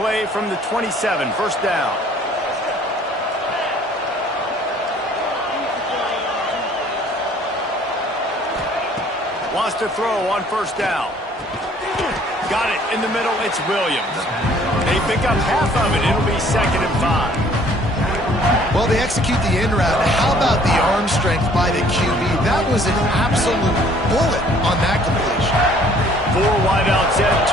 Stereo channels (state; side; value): normal; both; correlation 0.57